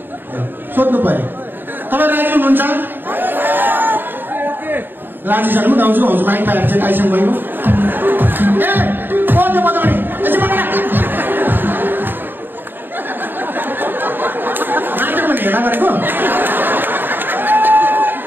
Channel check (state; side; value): late; left; 0.094 ms